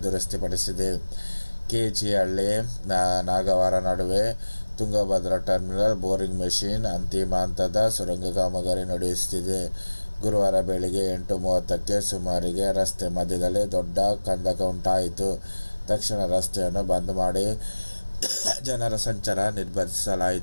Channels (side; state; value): both; inverted; correlation -1.00